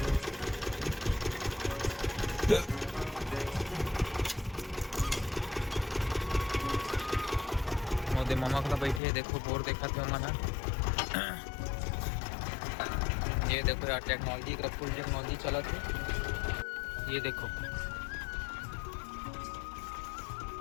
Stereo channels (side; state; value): right; drops out; at 9.0 s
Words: मोदे मामा का बैठे देखो बोर देखा थे मना। ये देखो यार टेक्नोलॉजी का फुल टेक्नोलॉजी चला थे। ये देखो